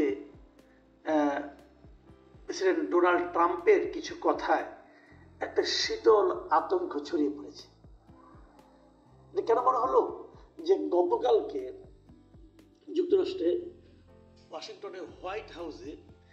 প্রেসিডেন্ট ডোনাল্ড ট্রাম্পের কিছু কথায় একটা শীতল আতঙ্ক ছড়িয়ে পড়েছে। কেন মনে হলো যে গতকালকে যুক্তরাষ্ট্রে ওয়াশিংটনের হোয়াইট হাউসে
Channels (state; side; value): identical; both; correlation 1.00